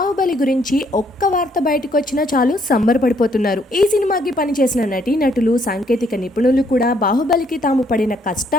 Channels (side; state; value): both; normal; correlation 0.68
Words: గురించి ఒక్క వార్త బయటకు వచ్చినా చాలు సంబరపడిపోతున్నారు. ఈ సినిమాకి పనిచేసిన నటీనటులు, సాంకేతిక నిపుణులు కూడా బాహుబలికి తాము పడిన